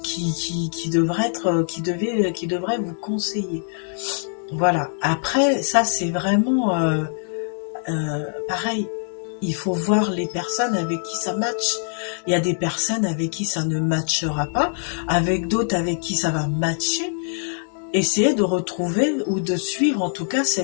qui devrait vous conseiller. Voilà. Après, ça c'est vraiment pareil. Il faut voir les personnes avec qui ça match. Il y a des personnes avec qui ça ne matchera pas, avec d'autres avec qui ça va matcher. Essayez de retrouver ou de suivre en tout cas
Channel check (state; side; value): silent; right; digital silence